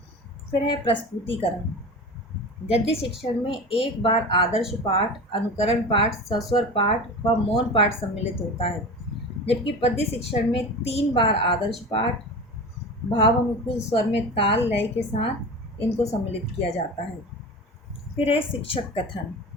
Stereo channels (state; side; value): normal; both; correlation 0.31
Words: फिर है प्रस्तुतिकरण। गद्य शिक्षण में एक बार आदर्श पाठ, अनुकरण पाठ, सस्वर पाठ व मौन पाठ सम्मिलित होता है, जबकि पद्य शिक्षण में 3 बार आदर्श पाठ, भाव अनुकूल स्वर में ताल लय के साथ इनको सम्मिलित किया जाता है। फिर है शिक्षक कथन।